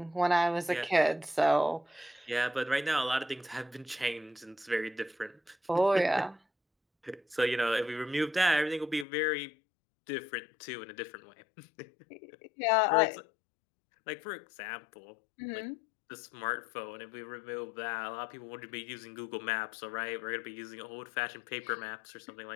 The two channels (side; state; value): right; drops out; at 9.1 s